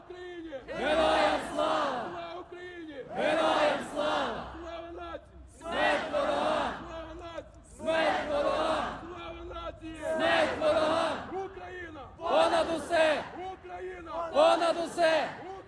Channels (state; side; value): identical; both; correlation 1.00